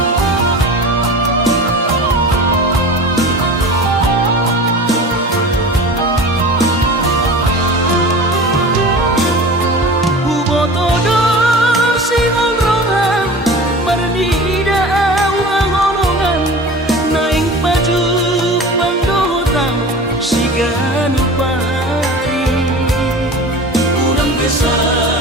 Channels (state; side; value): normal; both; correlation 0.36